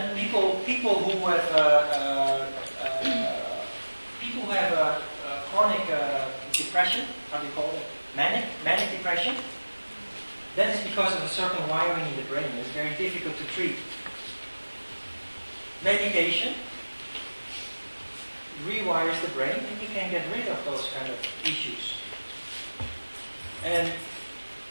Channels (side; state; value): both; inverted; correlation -1.00